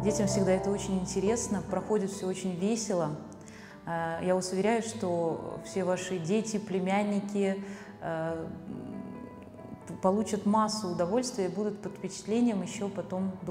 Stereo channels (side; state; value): both; identical; correlation 1.00